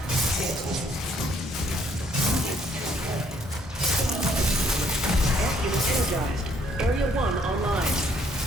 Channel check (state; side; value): normal; both; correlation 0.66